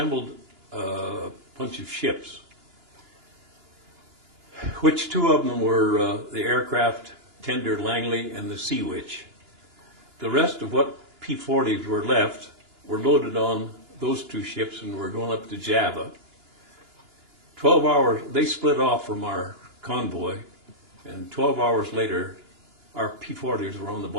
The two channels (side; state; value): left; late; 2.9 ms